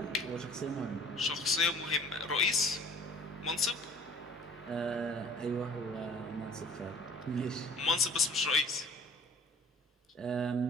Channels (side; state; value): both; normal; correlation 0.49